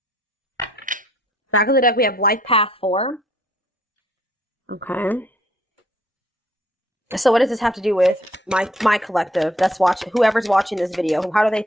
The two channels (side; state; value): both; normal; correlation 0.63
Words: Back of the deck, we have Life Path 4. Okay. So what does this have to do with my collective that's watching, whoever's watching this video? How do